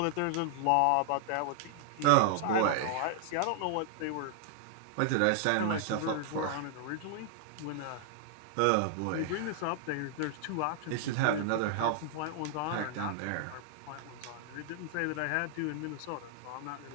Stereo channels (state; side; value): different; both; correlation 0.00